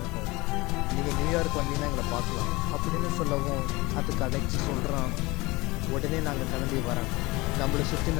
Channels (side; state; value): right; quieter; 22.7 dB